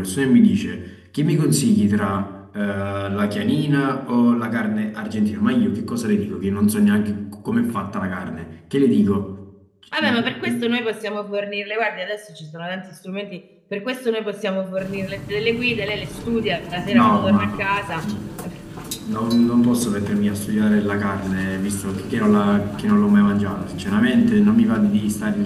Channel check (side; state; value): both; identical; correlation 1.00